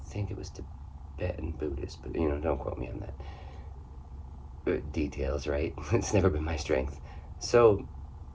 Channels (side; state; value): both; identical; correlation 1.00